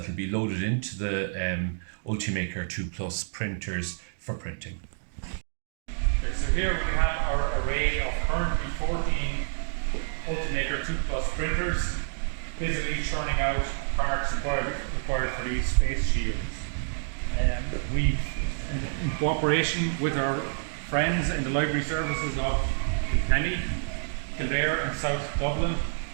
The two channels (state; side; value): silent; left; digital silence